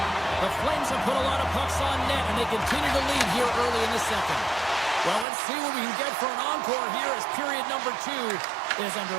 The Flames have put a lot of pucks on net, and they continue to lead here early in the second. Well, let's see what we can get for an encore here as period number 2 is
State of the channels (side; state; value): left; drops out; at 5.2 s